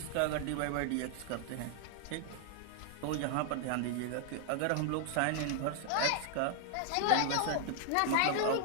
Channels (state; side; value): different; both; correlation 0.00